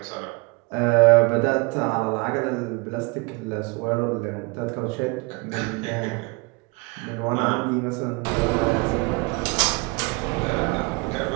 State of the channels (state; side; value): quieter; left; 27.6 dB